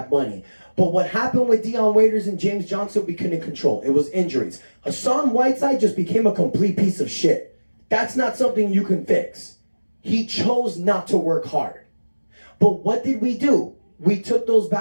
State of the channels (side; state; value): both; inverted; correlation -1.00